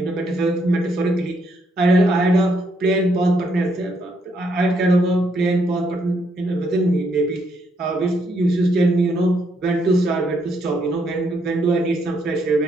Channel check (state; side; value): normal; both; correlation 0.74